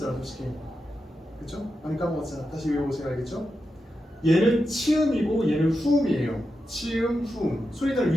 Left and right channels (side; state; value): both; normal; correlation 0.89